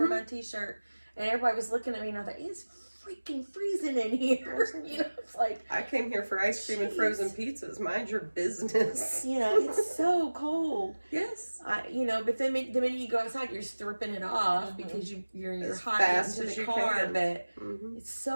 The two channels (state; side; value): inverted; both; correlation -1.00